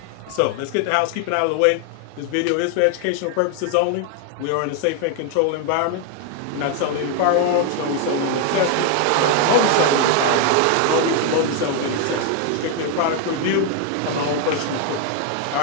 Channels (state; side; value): different; both; correlation 0.01